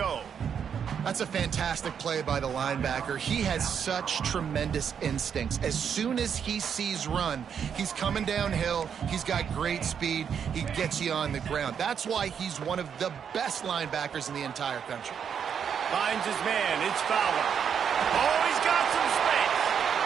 That's a fantastic play by the linebacker. He has such tremendous instincts. As soon as he sees run, he's coming downhill. He's got great speed. He gets you on the ground. That's why he's one of the best linebackers in the entire country. Finds his man. It's Fowler. Oh, he's got some space.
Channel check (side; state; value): left; quieter; 7.6 dB